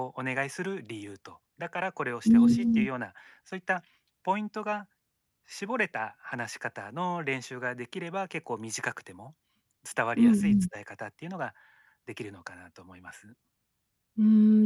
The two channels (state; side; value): identical; both; correlation 1.00